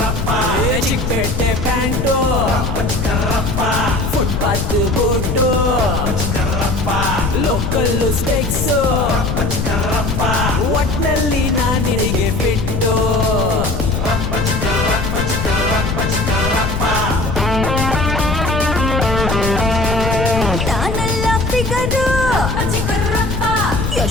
Chickpet pant footpath boot local ಸ್ಟೆಕ್ಸು ಒಟ್ನಲ್ಲಿ ನಾನು ನಿನಗೆ ಬಿಟ್ಟು ನಾನೆಲ್ಲ ಫಿಗರು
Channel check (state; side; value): noise; left; rumble, 2 dB below the sound